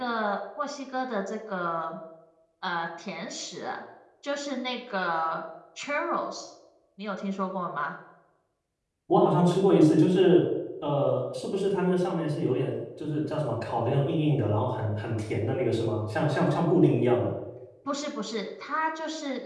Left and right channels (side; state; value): both; identical; correlation 1.00